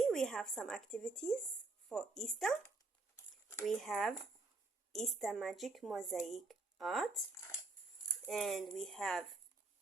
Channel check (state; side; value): quieter; left; 3.5 dB